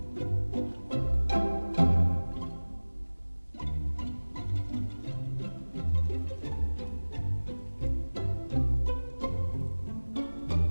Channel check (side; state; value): both; inverted; correlation -1.00